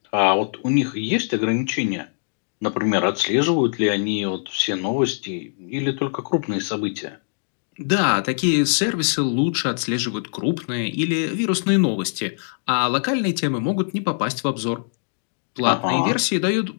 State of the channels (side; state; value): right; silent; digital silence